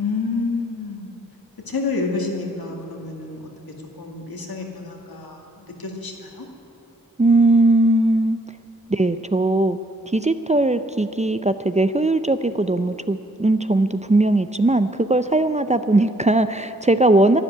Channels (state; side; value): normal; both; correlation 0.66